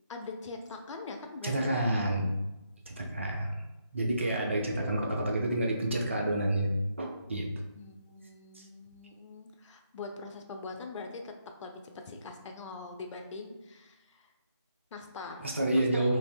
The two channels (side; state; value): both; inverted; correlation -0.77